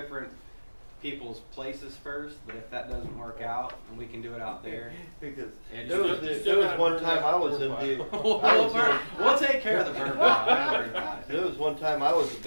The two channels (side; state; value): both; inverted; correlation -1.00